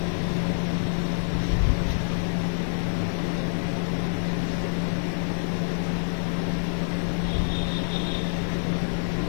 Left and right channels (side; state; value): right; silent; digital silence